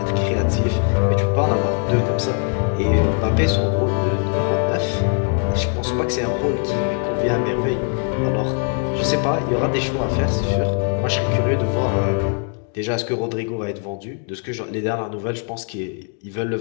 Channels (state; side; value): quieter; right; 38.5 dB